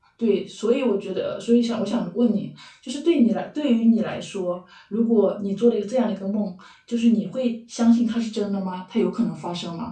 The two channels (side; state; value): both; identical; correlation 1.00